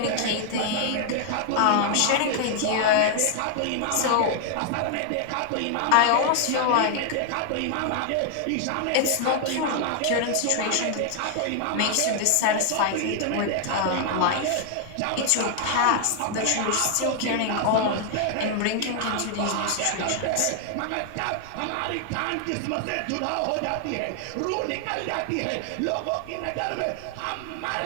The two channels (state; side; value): different; both; correlation 0.00